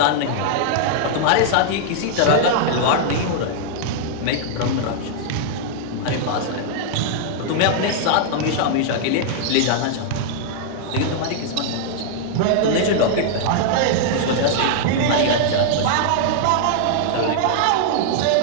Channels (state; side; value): different; both; correlation -0.01